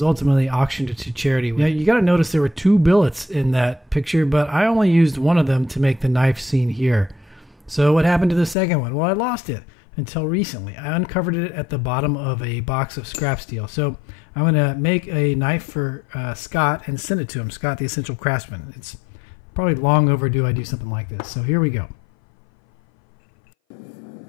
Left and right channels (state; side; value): drops out; right; at 8.6 s